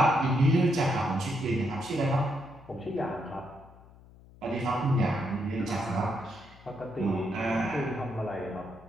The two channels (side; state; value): left; noise; hum, 23 dB below the sound